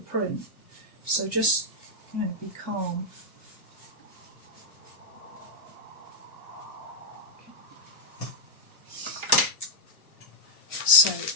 print. So just, you know, be calm. So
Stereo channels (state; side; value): late; right; 1.2 ms